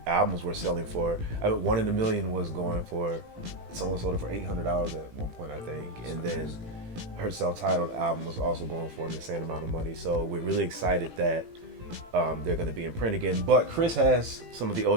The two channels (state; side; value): late; left; 18 ms